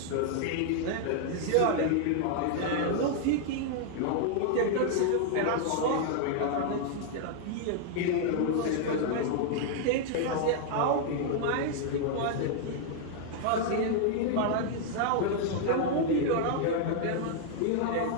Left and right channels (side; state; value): both; different; correlation -0.01